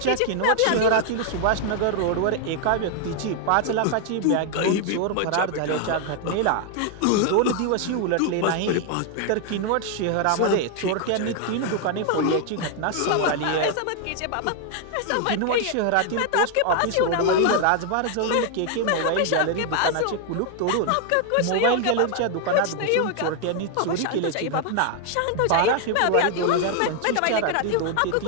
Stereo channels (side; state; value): both; different; correlation 0.00